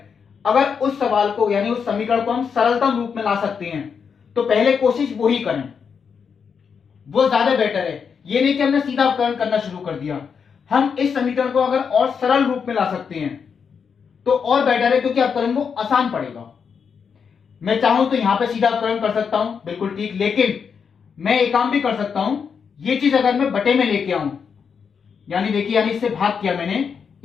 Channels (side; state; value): right; quieter; 6.4 dB